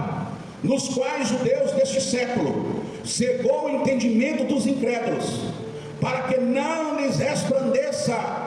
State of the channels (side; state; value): both; identical; correlation 1.00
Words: Nos quais o Deus deste século cegou o entendimento dos incrédulos, para que não lhes resplandeça